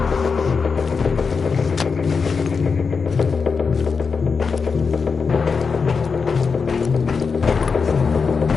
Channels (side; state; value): right; quieter; 5.3 dB